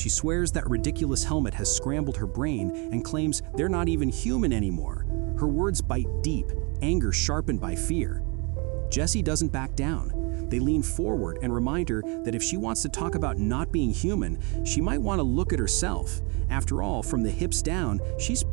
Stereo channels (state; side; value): quieter; left; 31.7 dB